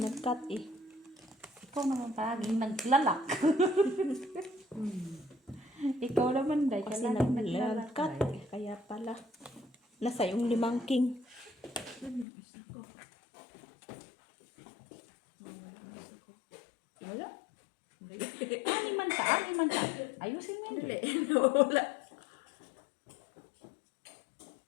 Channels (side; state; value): right; drops out; at 12.2 s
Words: nag-cut eh. Ikaw naman palaging naglalak. Ikaw naman, Day. Kasi Palaging naglalak. nag-cut Day. eh. Kaya pala. Nasa yung 5 king. Wala. Animan siya, animan siya. Ayusin mo yun. Wala.